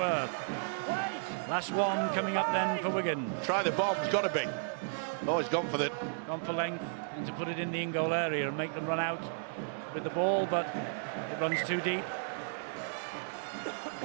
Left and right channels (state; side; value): silent; left; 55 dB below the other